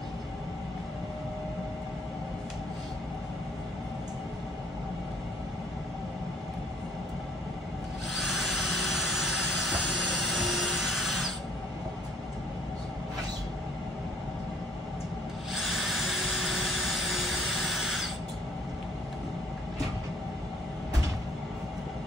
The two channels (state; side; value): normal; both; correlation 0.59